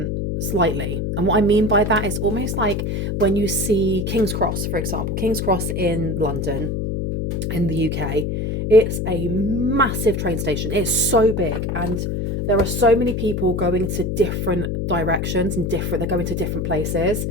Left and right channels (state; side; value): noise; left; hum, 1 dB below the sound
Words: slightly. And what I mean by that is almost like when you see King's Cross, for example. King's Cross in London, in the UK. It's a massive train station. It's so big, and there are so many people going to different directions and they're going to different places.